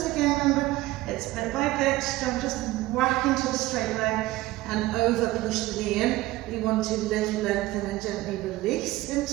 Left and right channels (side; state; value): left; quieter; 17.9 dB